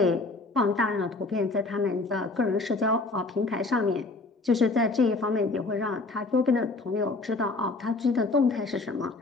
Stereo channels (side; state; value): right; quieter; 3.4 dB